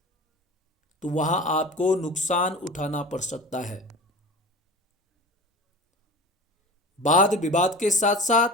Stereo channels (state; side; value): normal; both; correlation 0.34